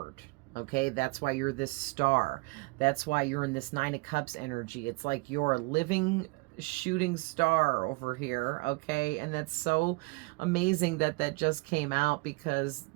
Okay. That's why you're this star. That's why you're in this Nine of Cups energy. It's like you're a living shooting star over here, okay. And that's so amazing that that just came out, because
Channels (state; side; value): quieter; left; 27.0 dB